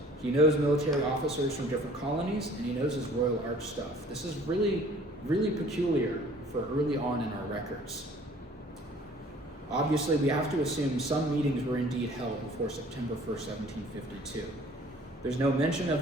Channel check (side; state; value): both; normal; correlation 0.52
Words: He knows military officers from different colonies, and he knows his Royal Arch stuff. This is really, really peculiar for early on in our records. Obviously, we have to assume some meetings were indeed held before September 1st, 1752. There's no mention of